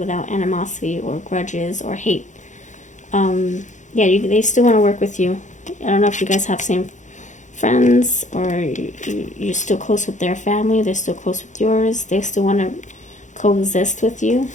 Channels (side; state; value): right; late; 0.35 ms